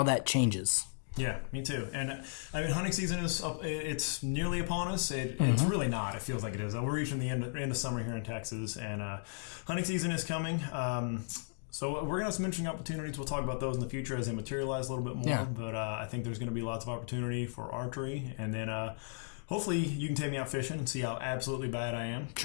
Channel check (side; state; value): right; silent; digital silence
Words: that changes. Yeah, me too. And hunting season it's nearly upon us. It's really not. It feels like it is. We're reaching the end of summer here in Texas, and hunting season is coming. So we're going to have some interesting opportunities. We'll talk about those in the future as they materialize a little bit more. Yeah. But I think there's going to be lots of opportunity for archery. And then hopefully you can take me out fishing and see how absolutely bad I am with